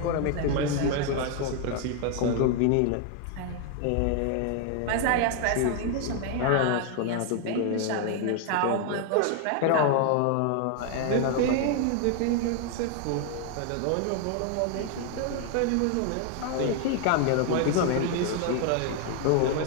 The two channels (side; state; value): both; different; correlation 0.00